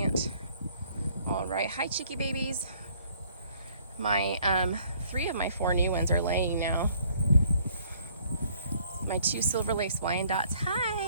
All right, hi cheeky babies. My 3 of my 4 new ones are laying now. My 2 silver lace Wyandottes.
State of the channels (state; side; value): inverted; both; correlation -0.62